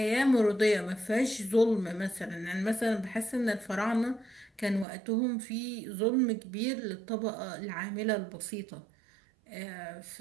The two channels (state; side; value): drops out; left; at 4.9 s